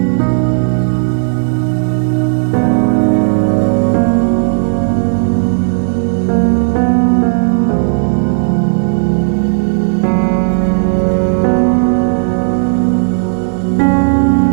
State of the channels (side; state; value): left; silent; digital silence